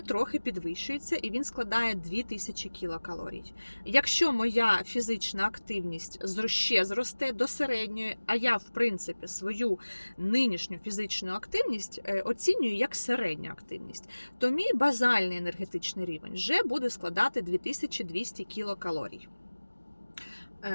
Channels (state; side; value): inverted; both; correlation -1.00